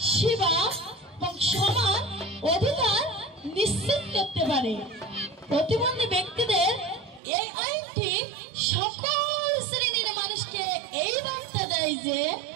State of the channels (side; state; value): left; drops out; at 7.2 s